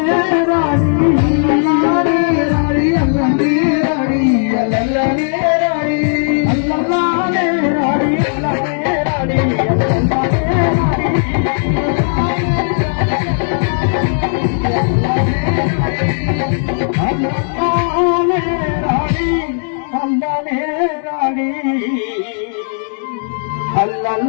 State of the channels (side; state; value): right; silent; digital silence